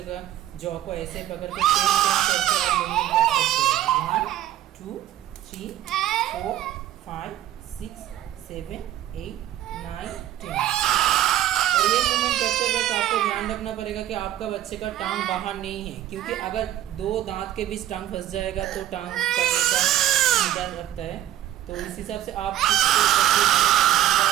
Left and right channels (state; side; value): quieter; left; 12.8 dB